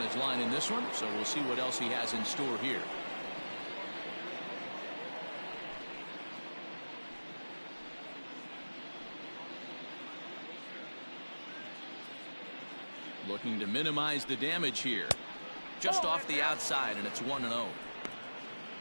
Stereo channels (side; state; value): both; inverted; correlation -1.00